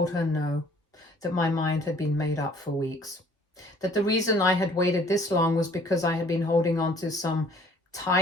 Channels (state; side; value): normal; both; correlation 0.56